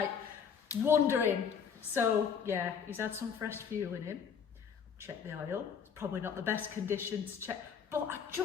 wondering. So yeah, he's had some fresh fuel in him. Check the oil. It's probably not the best condition to check, but I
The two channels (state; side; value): quieter; right; 6.9 dB